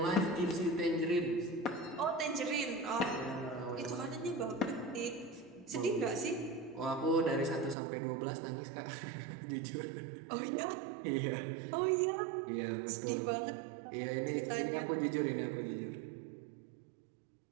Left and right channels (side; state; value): left; drops out; at 7.8 s